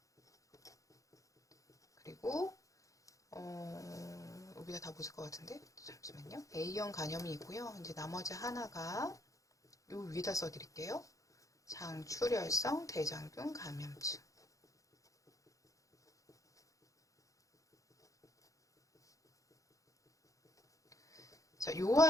그리고 여기다 다 보실 것 같은데 잠시만요. A형 간염이 있고요. 이제 나머지 하나가 요 위에다 써드릴게요. 장출혈성 대장균 감염증. 자, 요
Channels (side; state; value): right; late; 0.16 ms